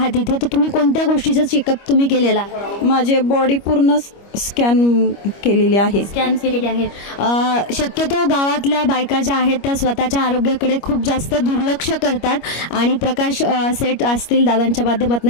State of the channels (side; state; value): right; late; 25 ms